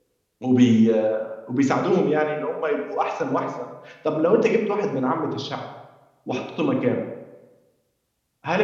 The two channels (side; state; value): both; identical; correlation 1.00